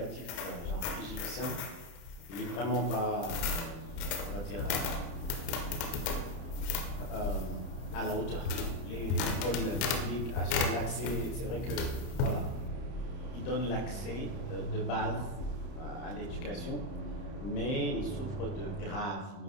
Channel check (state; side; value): late; right; 31 ms